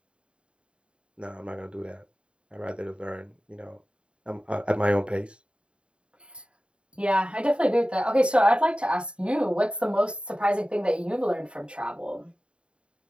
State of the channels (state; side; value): late; left; 0.055 ms